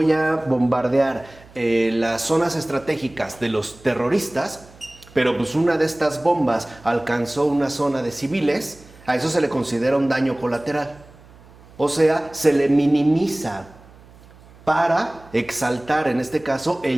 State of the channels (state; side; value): noise; right; hum, 24 dB below the sound